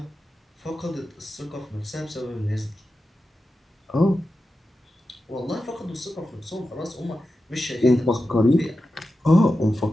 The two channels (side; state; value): both; normal; correlation 0.91